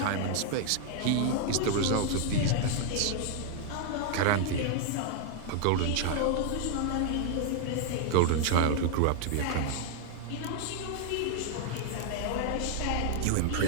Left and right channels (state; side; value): different; both; correlation 0.00